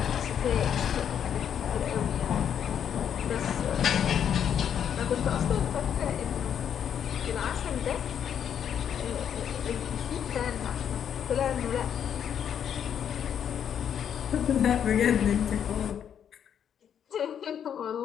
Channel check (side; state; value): right; quieter; 8.7 dB